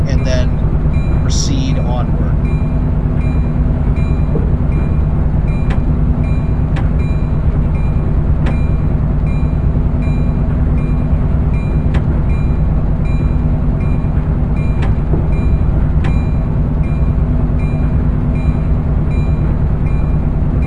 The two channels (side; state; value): both; identical; correlation 1.00